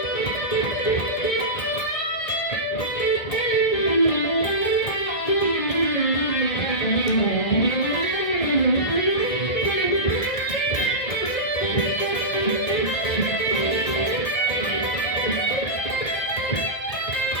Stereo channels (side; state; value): right; late; 1.4 ms